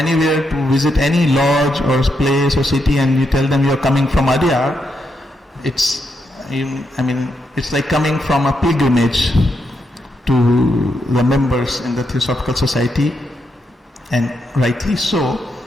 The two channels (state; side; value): normal; both; correlation 0.82